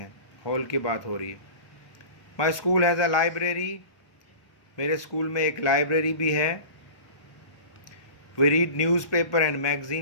हॉल की बात हो रही है. My school has a library. मेरे स्कूल में एक लाइब्रेरी भी है. We read newspaper and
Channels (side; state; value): right; late; 1.2 ms